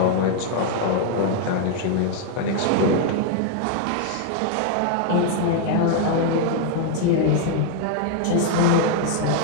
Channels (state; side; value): different; both; correlation 0.00